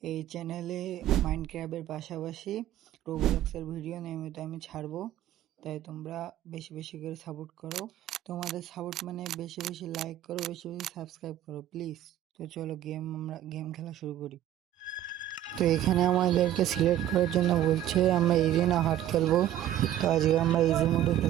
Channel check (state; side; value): quieter; left; 12.2 dB